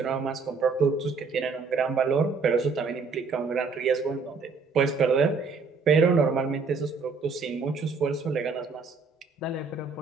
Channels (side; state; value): left; quieter; 4.7 dB